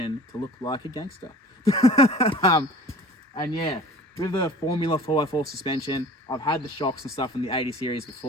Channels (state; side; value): normal; both; correlation 0.44